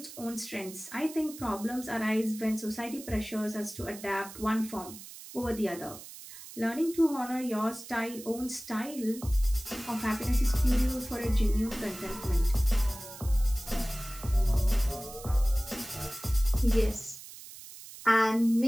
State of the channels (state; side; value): noise; right; hiss, 15 dB below the sound